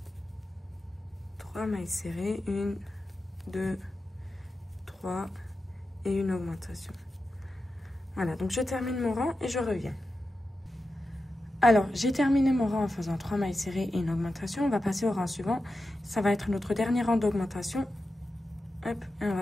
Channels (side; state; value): both; normal; correlation 0.91